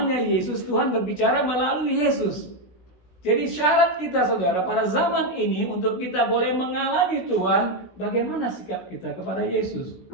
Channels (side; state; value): right; late; 17 ms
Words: Yesus, Tuhan berbicara melalui Yesus. Jadi syarat kita, saudara, pada zaman ini untuk kita boleh mengalami Tuhan, bagaimana sikap kita kepada Yesus?